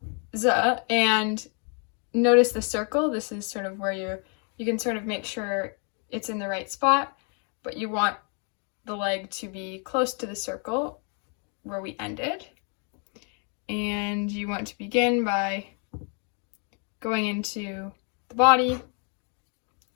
and notice the circle. This is sort of where you can sort of make sure it's in the right spot, but you want the leg to be close to the circle where we ended. And you want to begin by going into the body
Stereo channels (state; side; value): quieter; right; 39.6 dB